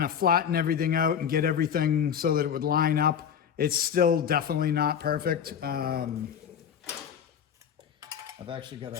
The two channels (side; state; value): right; quieter; 8.2 dB